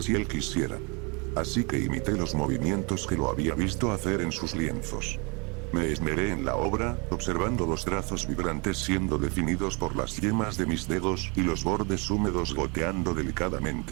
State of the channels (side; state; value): left; quieter; 31.5 dB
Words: él quisiera. Así que imité los movimientos que lo había visto hacer en sus lienzos. Me esmeré en la obra, observando los trazos vibrantes siendo definidos por las yemas de mis dedos y los bordes húmedos goteando